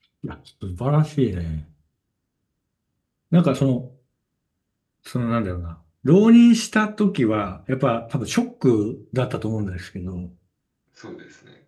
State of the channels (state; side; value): identical; both; correlation 1.00